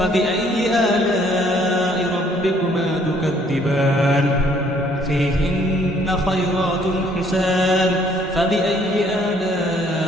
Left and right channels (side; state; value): both; normal; correlation 0.63